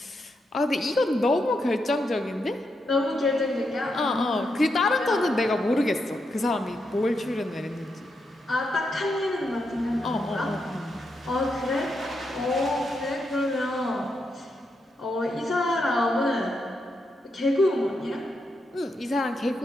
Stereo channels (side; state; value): both; normal; correlation 0.83